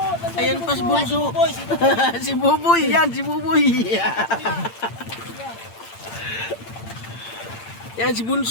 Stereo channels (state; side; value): late; right; 8.8 ms